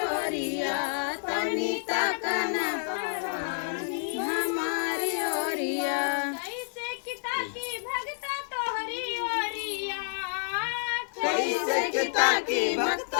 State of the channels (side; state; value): right; silent; 58 dB below the other